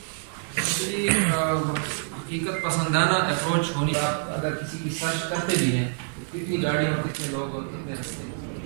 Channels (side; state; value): left; silent; 59 dB below the other